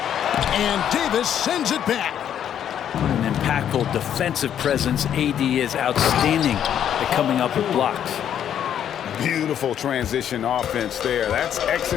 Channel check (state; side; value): quieter; right; 9.6 dB